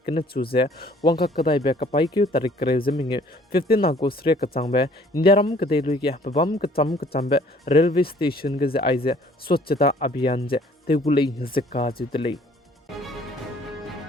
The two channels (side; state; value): both; normal; correlation 0.57